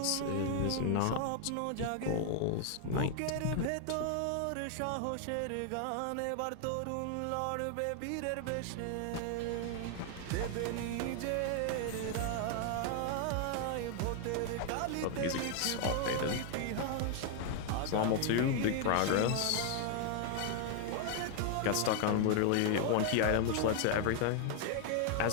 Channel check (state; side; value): different; both; correlation 0.00